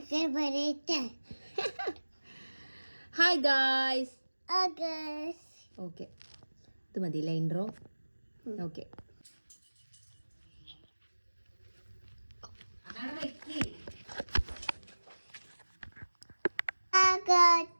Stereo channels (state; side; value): inverted; both; correlation -1.00